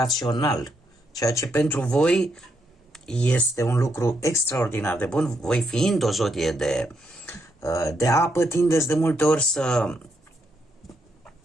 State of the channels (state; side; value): normal; both; correlation 0.78